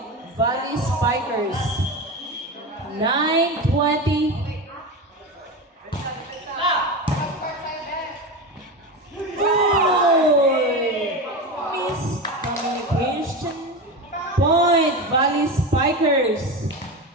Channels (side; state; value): both; normal; correlation 0.22